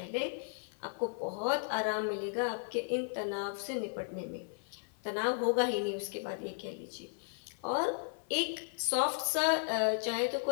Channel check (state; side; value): silent; right; 54 dB below the other